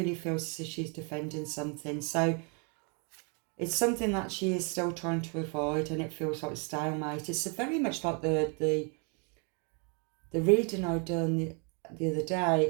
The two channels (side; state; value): left; quieter; 36.5 dB